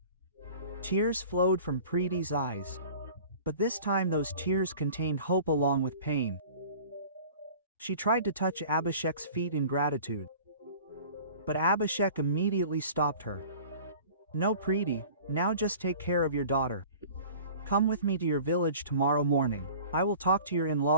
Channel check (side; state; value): both; inverted; correlation -0.44